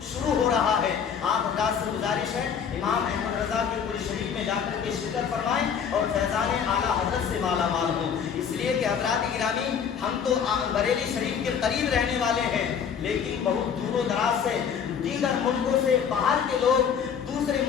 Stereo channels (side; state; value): right; quieter; 7.3 dB